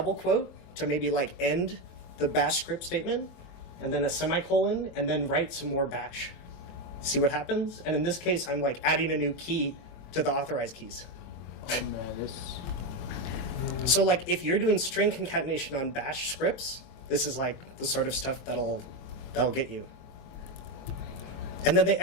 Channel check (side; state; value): right; late; 22 ms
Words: quote to maybe like end the bash script statement, and then a semicolon, and then write some more bash. See what happens? And in this case, I'm like adding a new key to the authorized keys. Oh man, this. So like if you're doing string concatenation on bash scripts, this is like the sort of stuff that'll get you. And then they